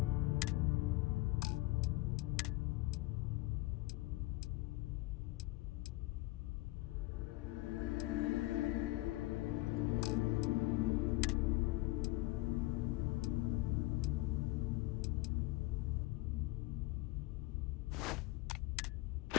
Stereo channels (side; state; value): right; quieter; 20.2 dB